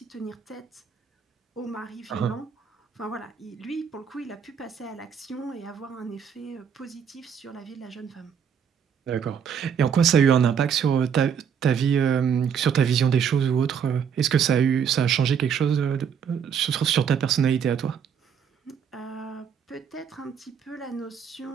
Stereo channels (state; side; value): quieter; left; 7.5 dB